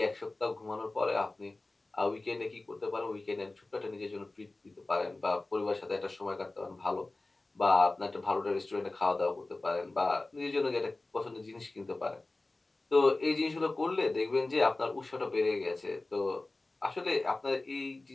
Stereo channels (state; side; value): quieter; right; 3.0 dB